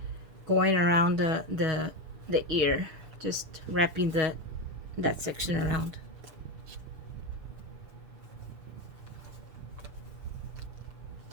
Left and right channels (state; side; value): late; left; 6.7 ms